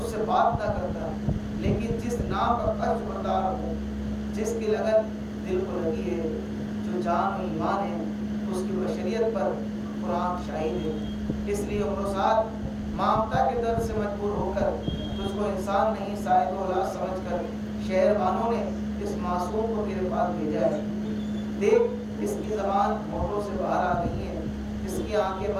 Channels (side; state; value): both; identical; correlation 1.00